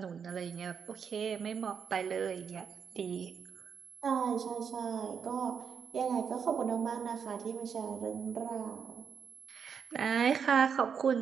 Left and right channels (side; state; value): left; quieter; 6.8 dB